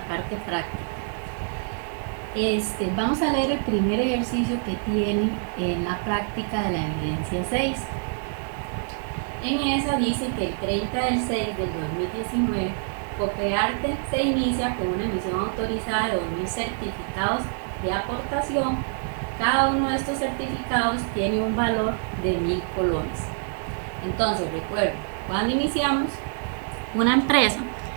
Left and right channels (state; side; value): silent; left; 61 dB below the other